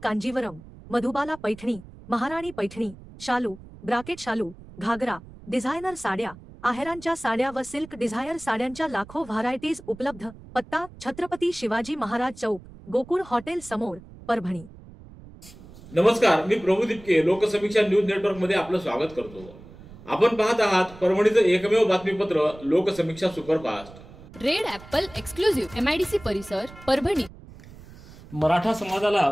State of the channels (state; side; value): noise; right; rumble, 19 dB below the sound